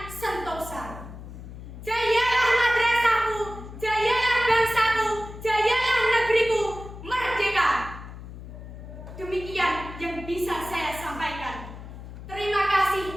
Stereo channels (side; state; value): left; noise; hum, 13 dB below the sound